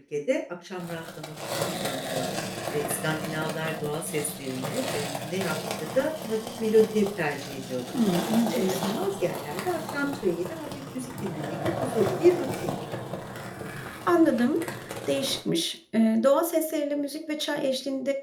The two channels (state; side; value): identical; both; correlation 1.00